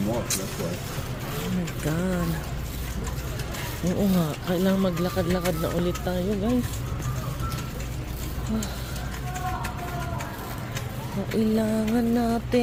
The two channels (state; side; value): identical; both; correlation 1.00